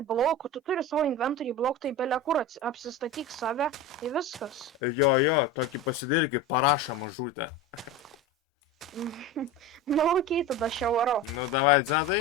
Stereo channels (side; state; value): both; normal; correlation 0.27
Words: blokų, tu turi savo inventorių blokų, tai belia kur apsistatyk save ir viskas. Jo, tokį pasidarykį parašą mažutę. Nu, okei, tada aš jau varau. Nu, davai,